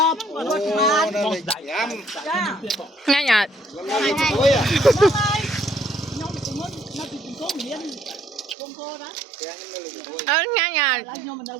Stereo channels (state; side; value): drops out; left; at 8.6 s